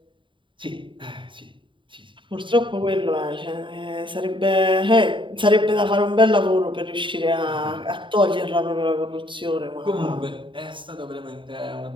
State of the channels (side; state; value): left; late; 0.24 ms